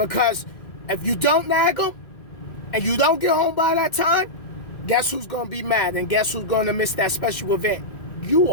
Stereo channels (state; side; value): late; right; 2.1 ms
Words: if you don't nag them and you don't get home by that time, guess who's going to be mad, and guess who's going to miss that special event? You